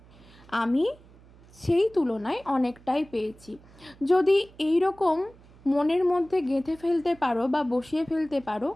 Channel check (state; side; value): noise; right; hum, 25 dB below the sound